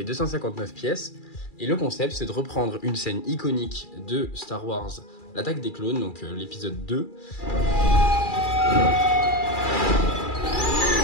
259 pièces, et le concept c'est de reprendre une scène iconique de Star Wars, l'attaque des clones, donc l'épisode 2.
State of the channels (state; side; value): late; right; 2.4 ms